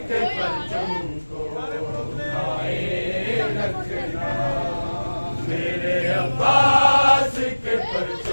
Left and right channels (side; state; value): both; inverted; correlation -1.00